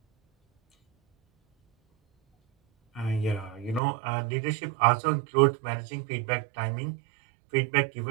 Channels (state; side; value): drops out; left; at 3.8 s